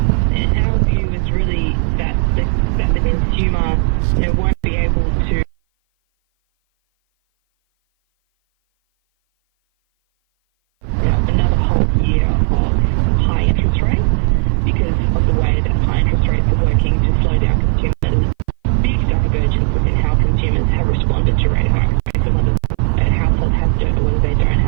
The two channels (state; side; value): silent; left; 57 dB below the other